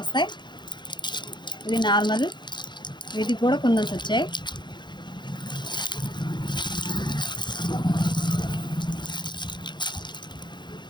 ఇది నార్మల్, వీటికి కూడా కుందన్స్ వచ్చాయి.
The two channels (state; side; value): late; right; 0.22 ms